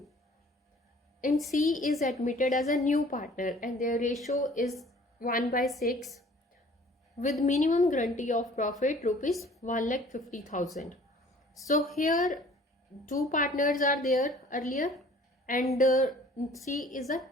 And C is admitted as a new partner and their ratio is 1/6 with minimum guarantee of profit rupees 1,50,000. So here two partners are there earlier and C is a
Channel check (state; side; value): normal; both; correlation 0.52